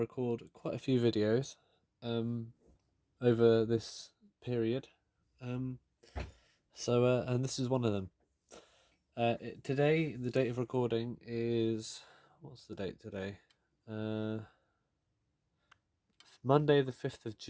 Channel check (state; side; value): identical; both; correlation 1.00